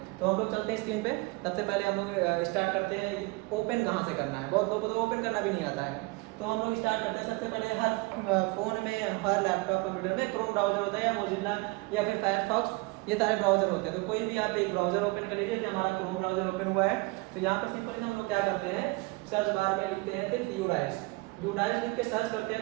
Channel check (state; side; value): quieter; left; 25.4 dB